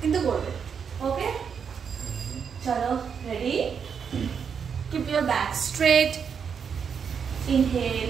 কিন্তু করবে। ওকে? চলো, ready? Keep your back straight.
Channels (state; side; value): quieter; left; 6.8 dB